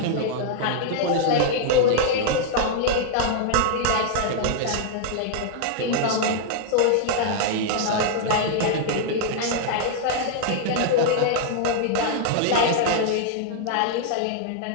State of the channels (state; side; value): different; both; correlation -0.01